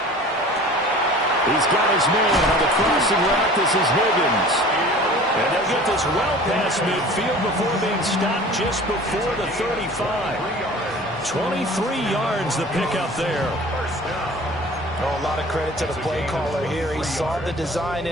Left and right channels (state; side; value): normal; both; correlation 0.43